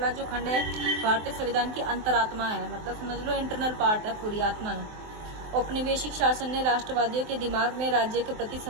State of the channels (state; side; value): late; left; 23 ms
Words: जो खंड है भारतीय संविधान की अंतरात्मा है, मतलब समझ लो इंटरनल पार्ट है, पूरी आत्मा है। औपनिवेशिक शासन ने राष्ट्रवादियों के दिमाग में राज्य के प्रति